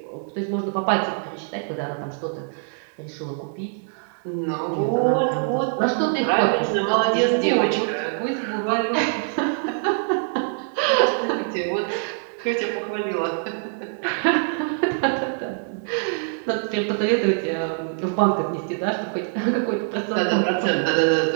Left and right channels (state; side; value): silent; left; 63 dB below the other